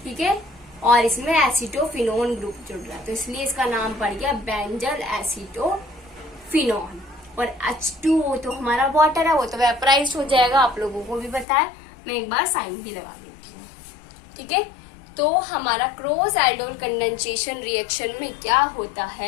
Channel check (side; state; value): right; drops out; at 11.5 s